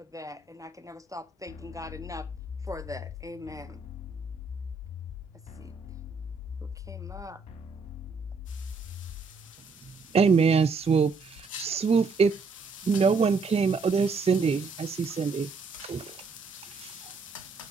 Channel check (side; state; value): left; quieter; 4.4 dB